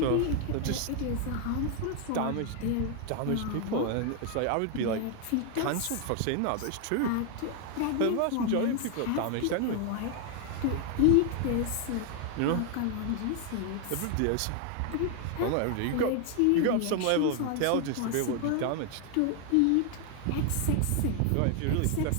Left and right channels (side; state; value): both; different; correlation 0.01